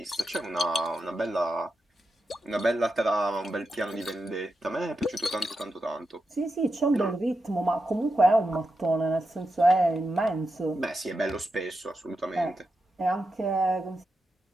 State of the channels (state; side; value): normal; both; correlation 0.88